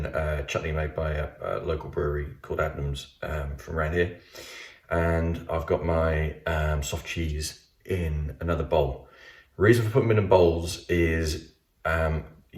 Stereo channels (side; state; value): both; identical; correlation 1.00